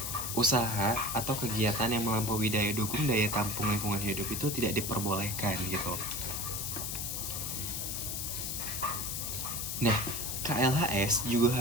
usaha atau kegiatan yang melampaui daya dukung daya tampung lingkungan hidup itu tidak diperbolehkan gitu. Nah, KLHS juga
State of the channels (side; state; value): left; noise; hiss, 3 dB below the sound